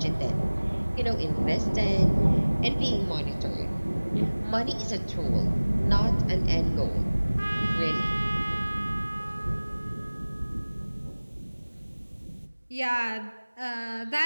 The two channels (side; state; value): both; inverted; correlation -1.00